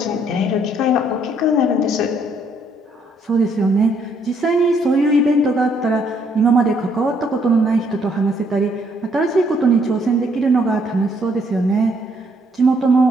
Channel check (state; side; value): normal; both; correlation 0.69